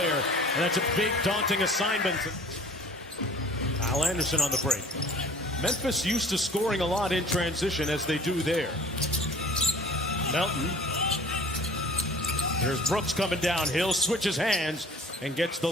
and that's a big, daunting assignment. Kyle Anderson on the break. Memphis used to scoring a lot in transition, as they do there. Melton. Here's Brooks coming downhill, switches hands, and gets the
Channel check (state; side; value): normal; both; correlation 0.48